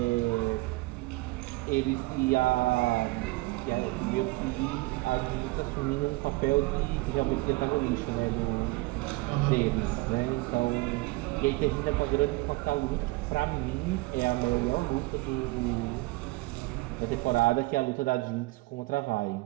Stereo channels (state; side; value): quieter; left; 22.2 dB